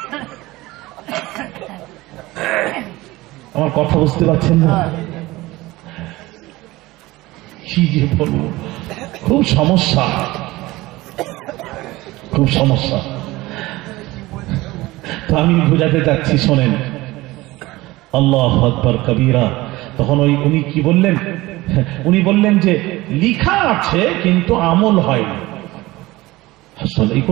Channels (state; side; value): quieter; left; 19.4 dB